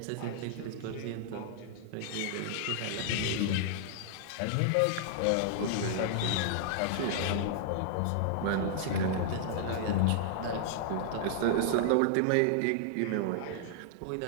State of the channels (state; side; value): different; both; correlation -0.01